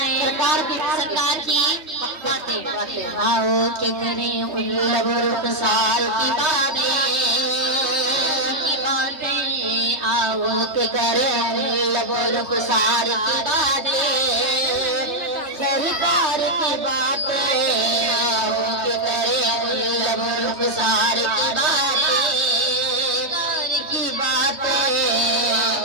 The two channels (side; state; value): left; late; 3.2 ms